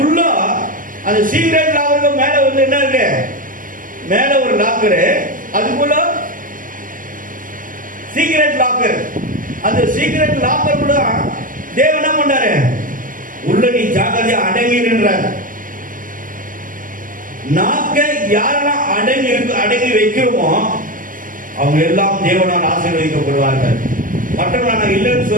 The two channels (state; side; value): late; left; 0.39 ms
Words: அந்த சீக்ரெட் லாக்கருக்கு மேல வந்து என்ன இருக்கு? மேல ஒரு லாக்கரு, அதுக்குள்ள சீக்ரெட் லாக்கர். அந்த சீக்ரெட் லாக்கர் கூட தேவன் என்ன பண்ணாரு? உள்ள நீ ஜாக்கிரதையா அடங்கின்றார். நாக்கை யாரெல்லாம் அடங்கி வைக்கிறோமோ அவங்க எல்லாம் தேவனால் ஆசீர்வதிக்கப்படுவார்கள். மற்றவர்கள் நான் இல்லைன்னு